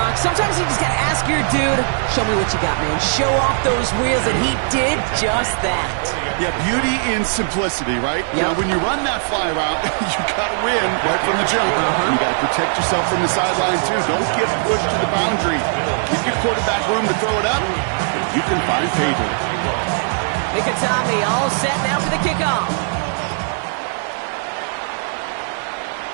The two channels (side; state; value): left; silent; 66 dB below the other